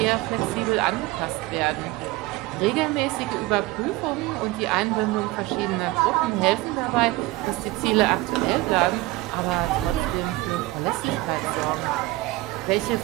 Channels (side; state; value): left; quieter; 19.4 dB